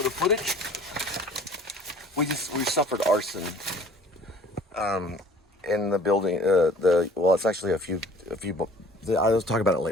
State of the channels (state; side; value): normal; both; correlation 0.50